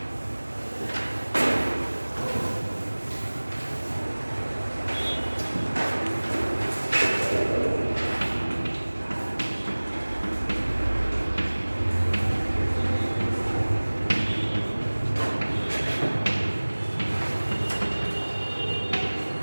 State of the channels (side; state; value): both; inverted; correlation -1.00